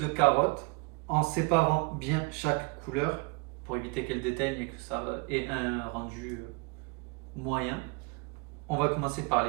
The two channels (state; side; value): quieter; left; 30.8 dB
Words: carottes en séparant bien chaque couleur pour éviter qu'elle déteigne et que ça ait un rendu moyen. On va commencer par